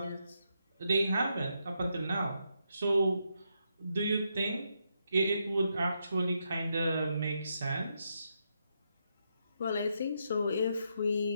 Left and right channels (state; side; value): inverted; both; correlation -0.81